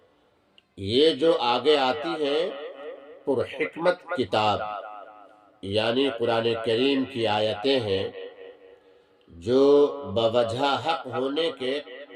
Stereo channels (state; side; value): identical; both; correlation 1.00